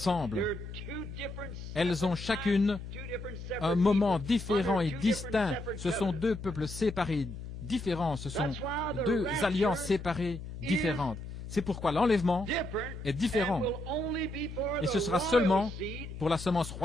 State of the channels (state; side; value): noise; left; hum, 10 dB below the sound